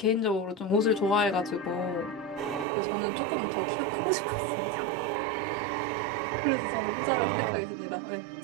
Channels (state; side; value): drops out; left; at 2.7 s